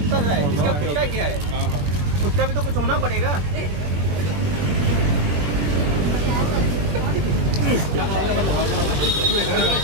कर रहा है, इसका खुद का क्या है, खुद का भी तो कुछ होना पड़ेगा।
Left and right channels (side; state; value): left; late; 21 ms